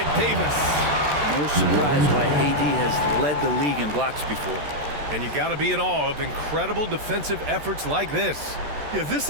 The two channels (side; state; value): left; late; 13 ms